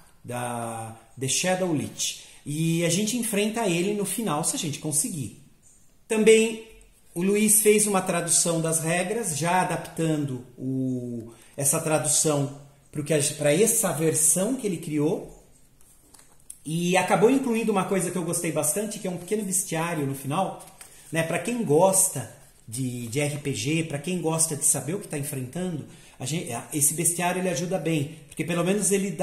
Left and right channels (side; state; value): both; identical; correlation 1.00